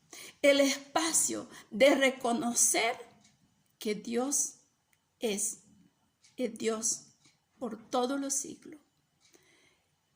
el espacio de reconocer que Dios es el Dios por todos los siglos.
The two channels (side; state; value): both; identical; correlation 1.00